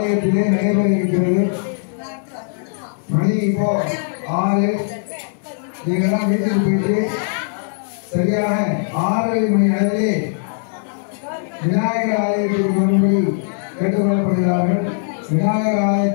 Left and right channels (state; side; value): silent; right; 66 dB below the other